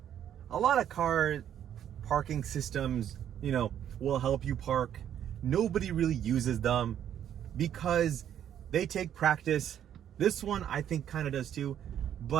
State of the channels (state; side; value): quieter; left; 10.0 dB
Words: a lot of car parking systems, you know, will help you park. Nobody really uses them because they take practice. This one I think kind of does too,